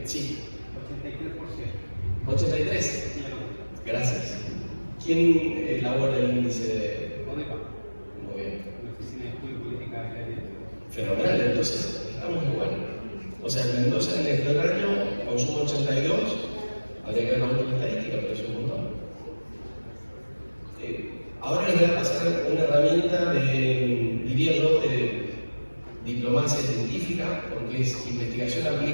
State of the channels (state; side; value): inverted; both; correlation -1.00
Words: sí. 83%. 83%. Gracias. ¿Quién elabora el índice de...? ODEPA. Muy bien. La Oficina de Estudio Política de Aire. Fenomenal, entonces estamos igual. O sea, en Mendoza en el febrero consumo 82, habría que ver la última estadística, pero es un montón. Ahora les voy a pasar una herramienta diría yo, de diplomacia científica, porque es investigación